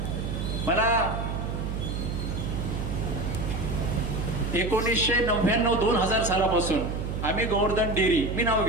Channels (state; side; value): noise; right; hum, 3 dB below the sound